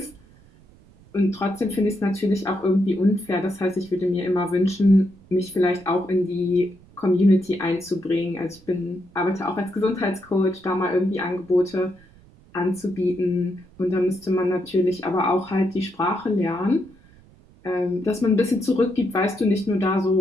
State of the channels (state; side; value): noise; right; rumble, 26 dB below the sound